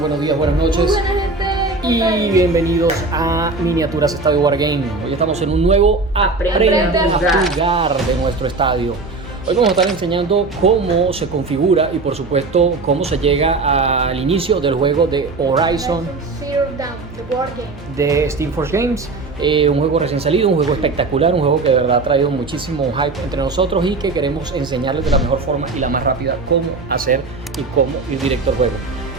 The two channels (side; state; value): left; quieter; 3.7 dB